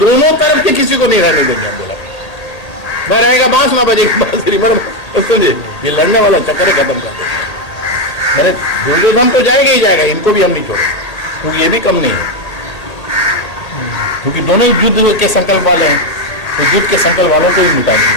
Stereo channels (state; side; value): late; right; 1.8 ms